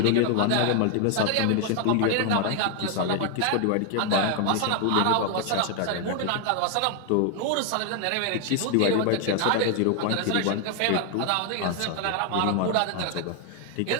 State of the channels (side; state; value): both; different; correlation 0.00